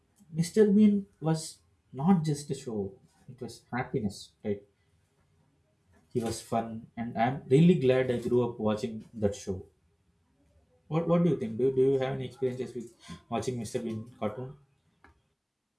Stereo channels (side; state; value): both; identical; correlation 1.00